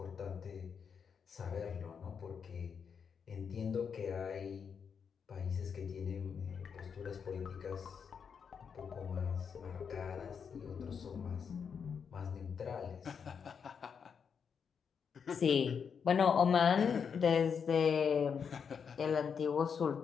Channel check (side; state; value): right; quieter; 6.6 dB